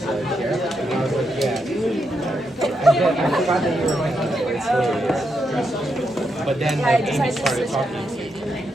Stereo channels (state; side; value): normal; both; correlation 0.82